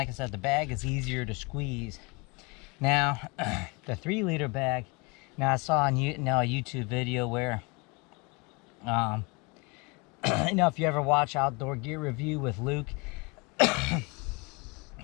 I said, the bag is easier to squeeze. Now, the 3 liter bag, now I saw on a YouTube video where, if you ever watch Outdoor Gear Review with Luke, had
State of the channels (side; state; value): right; quieter; 28.6 dB